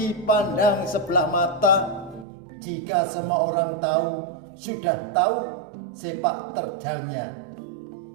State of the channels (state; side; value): drops out; left; at 2.2 s